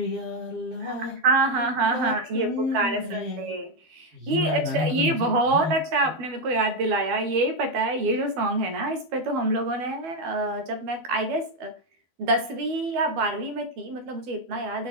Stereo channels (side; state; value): left; late; 12 ms